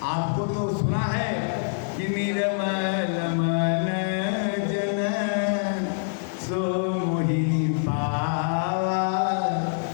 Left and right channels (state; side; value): silent; right; 60 dB below the other